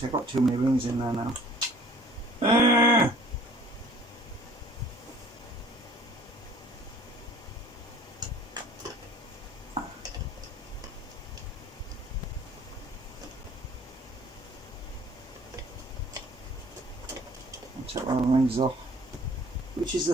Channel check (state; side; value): normal; both; correlation 0.53